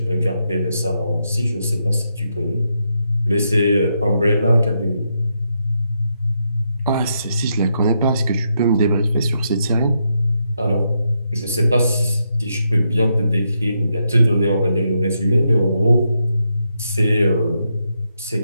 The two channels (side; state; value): both; inverted; correlation -0.81